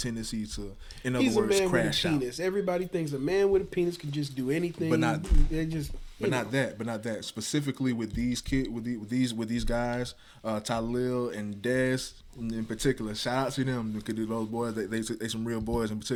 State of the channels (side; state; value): both; identical; correlation 1.00